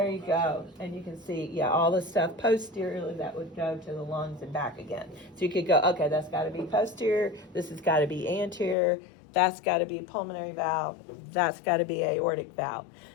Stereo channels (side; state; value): right; drops out; at 8.8 s